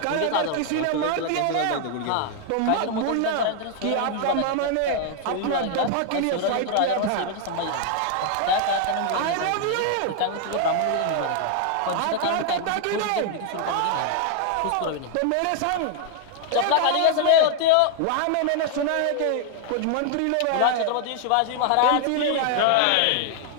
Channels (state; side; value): different; both; correlation 0.00